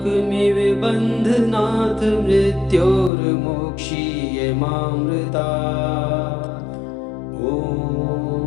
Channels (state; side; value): drops out; right; at 3.1 s